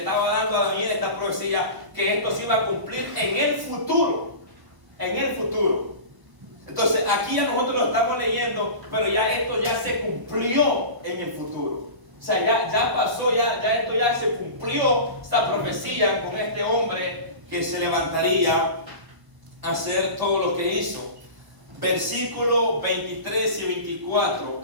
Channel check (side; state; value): left; late; 1.0 ms